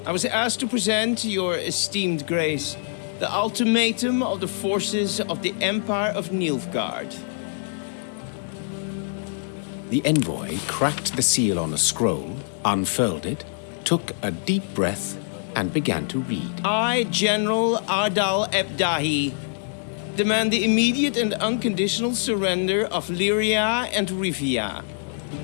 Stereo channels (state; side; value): silent; right; 62 dB below the other